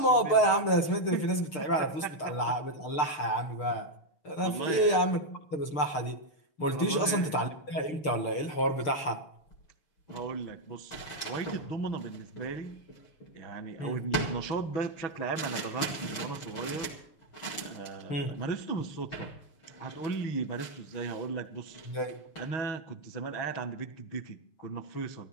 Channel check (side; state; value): right; late; 6.6 ms